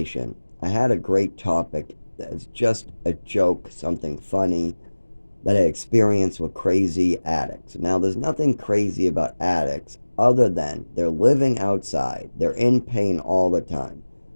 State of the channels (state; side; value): inverted; both; correlation -1.00